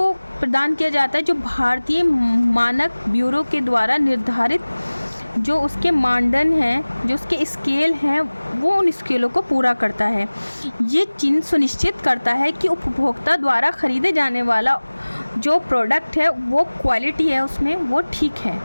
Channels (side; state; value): both; inverted; correlation -1.00